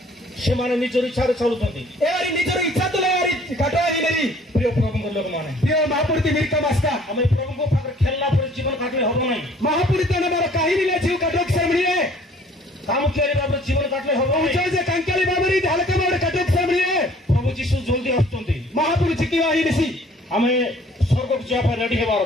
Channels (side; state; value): both; normal; correlation 0.55